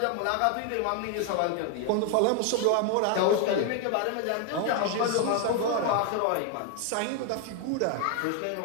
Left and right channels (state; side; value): different; both; correlation 0.00